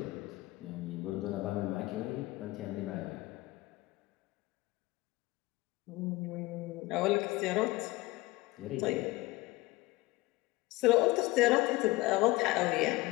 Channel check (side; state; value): right; quieter; 20.4 dB